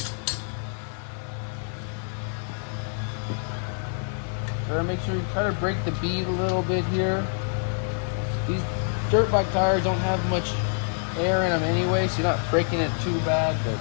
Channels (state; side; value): silent; right; 61 dB below the other